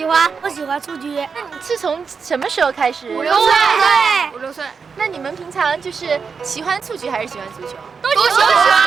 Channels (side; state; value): left; quieter; 5.6 dB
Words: 欢。我喜欢蹴鞠。那你是从什么时候开始？5、6岁。5、6岁。那你们平常就是喜欢蹴鞠还是喜欢足球？都喜